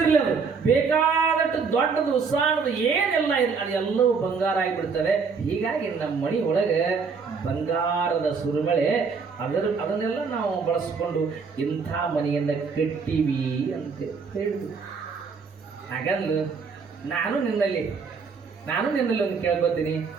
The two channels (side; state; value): left; quieter; 5.2 dB